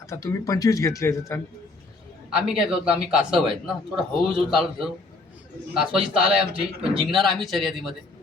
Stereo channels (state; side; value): quieter; right; 3.3 dB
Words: आता तुम्ही 25 घेतले त्यांनी. आम्ही काय करतो, आम्ही कासव आहेत ना, थोडं हळूहळू चालत जाऊ. कासवाची चाल आहे आमची, पण जिंकणार आम्ही शर्यतीमध्ये.